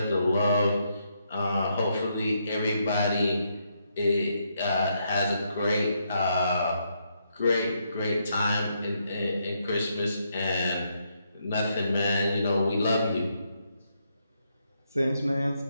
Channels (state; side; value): inverted; both; correlation -0.77